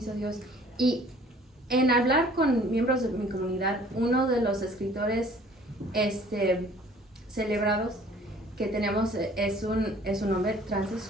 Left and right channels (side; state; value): both; normal; correlation 0.53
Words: Dios. Y en hablar con miembros de mi comunidad, uno de los escritores celebrados que tenemos es un hombre